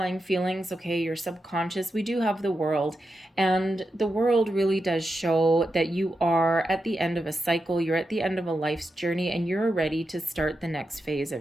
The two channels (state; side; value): normal; both; correlation 0.88